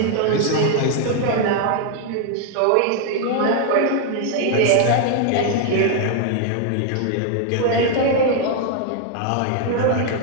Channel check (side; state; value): both; different; correlation 0.00